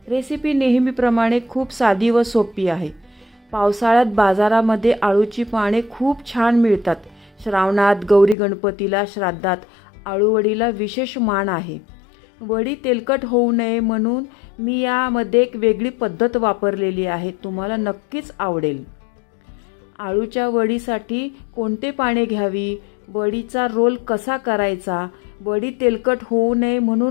रेसिपी नेहमीप्रमाणे खूप साधी व सोपी आहे. पावसाळ्यात बाजारामध्ये आळूची पाने खूप छान मिळतात. श्रावणात, गौरी गणपतीला, श्राद्धात आळूवडीला विशेष मान आहे. वडी तेलकट होऊ नये म्हणून मी यामध्ये एक वेगळी पद्धत वापरलेली आहे. तुम्हाला नक्कीच आवडेल. आळूच्या वडीसाठी कोणते पाने घ्यावी, वडीचा रोल कसा करायचा, वडी तेलकट होऊ नये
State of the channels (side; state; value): right; drops out; at 8.3 s